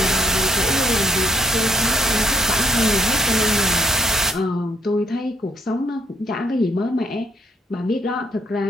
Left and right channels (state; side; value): normal; both; correlation 0.66